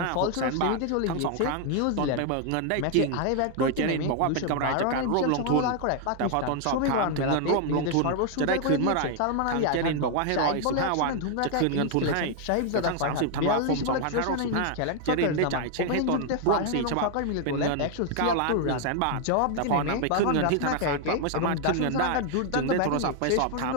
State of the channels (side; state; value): both; different; correlation 0.00